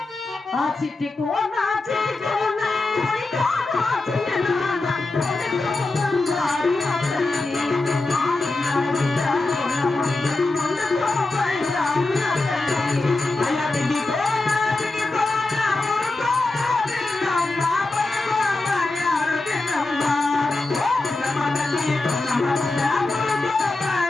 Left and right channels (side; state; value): right; quieter; 3.2 dB